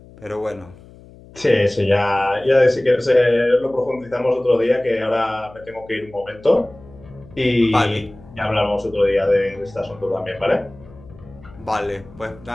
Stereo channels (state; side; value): noise; left; hum, 22 dB below the sound